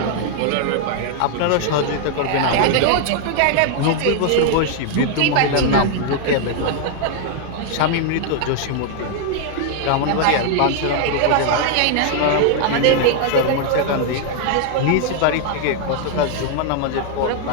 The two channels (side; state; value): both; different; correlation 0.00